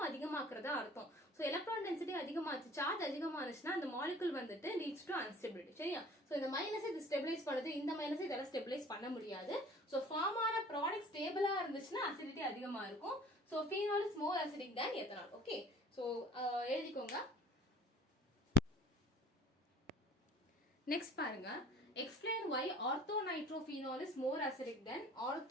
அதிகமாக்குறதா அர்த்தம். சோ எலக்ட்ரான் டென்சிட்டி அதிகமாச்சு, சார்ஜ் அதிகமானுச்சுன்னா அந்த மாலிகுல் வந்துட்டு லீட்ஸ் டு அன்ஸ்டெபிலிட்டி. சரியா? சோ இந்த மைனஸ் இது ஸ்டெபிலைஸ் பண்ணுது, இந்த மைனஸ் இதெல்லாம் ஸ்டெபிலைஸ் பண்ண முடியாது. சோ ஃபார்ம் ஆன ப்ராடக்ட் ஸ்டேபிளா இருந்துச்சுன்னா அசிடிட்டி அதிகமா இருக்கும். So phenol is more acidic than ethanol. Okay, so எழுதிக்கோங்க. Next பாருங்க, explain why orthonitrophenol is more acidic than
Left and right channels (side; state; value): both; normal; correlation 0.50